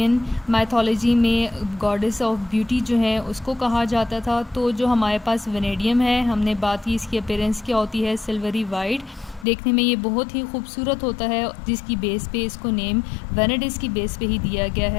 मैथोलॉजी में गॉडेस ऑफ ब्यूटी जो है उसको कहा जाता था। तो जो हमारे पास वेनेडियम है, हमने बात की इसकी अपीयरेंस क्या होती है, सिल्वरी वाइट, देखने में ये बहुत ही खूबसूरत होता है, जिसकी बेस पे इसको नेम वेनेडिस की बेस पे ही दिया गया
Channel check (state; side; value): drops out; right; at 9.5 s